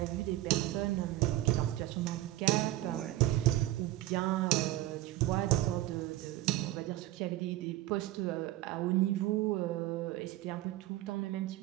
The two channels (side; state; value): left; quieter; 15.9 dB